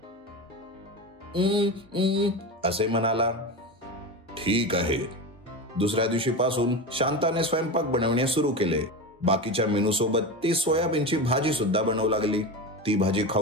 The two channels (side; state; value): both; normal; correlation 0.22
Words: असे म्हणाला. ठीक आहे. दुसऱ्या दिवशीपासून शांताने स्वयंपाक बनवणे सुरू केले. बाकीच्या मेनू सोबत ती सोयाबीनची भाजी सुद्धा बनवू लागली. ती भाजी